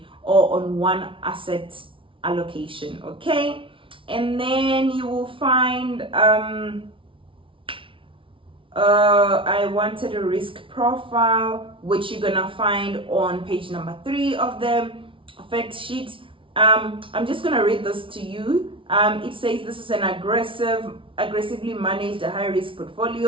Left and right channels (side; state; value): left; late; 0.25 ms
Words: or on one asset allocation. Okay, and then you will find I wanted a risk profile, which you're gonna find on page number 3 of the fact sheet. I'm just gonna read this to you. It says this is an aggressively managed high risk